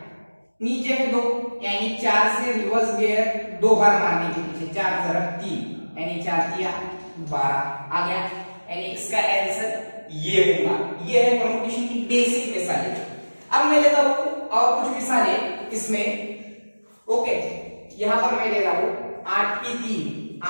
नीचे है 2, यानी 4 से रिवर्स गियर 2 बार मारने के पीछे, 4 जरब 3, यानी 4 दिया 12 आ गया, यानी इसका आंसर ये होगा। ये है परमुटेशन की बेसिक मिसालें। अब मैं लेता हूं और कुछ मिसालें इसमें। ओके, यहां पर मैं ले रहा हूं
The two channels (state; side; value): inverted; both; correlation -1.00